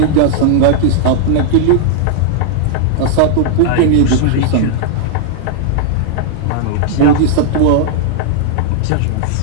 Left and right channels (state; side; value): different; both; correlation -0.01